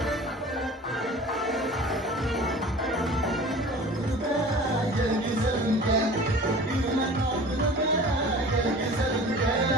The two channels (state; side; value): normal; both; correlation 0.41